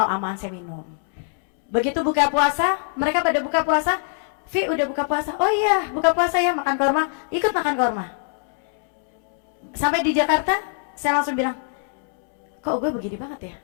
aman saya minum. Begitu buka puasa, mereka pada buka puasa, Vi udah buka puasa, oh iya buka puasa ya, makan korma, ikut makan korma. Sampai di Jakarta saya langsung bilang, kok gue begini banget ya,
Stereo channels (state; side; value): silent; right; 64 dB below the other